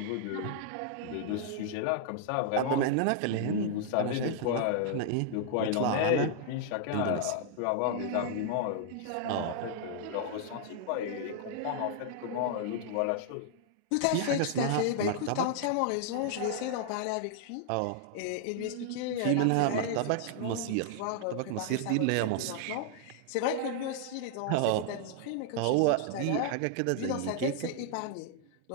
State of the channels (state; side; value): different; both; correlation -0.01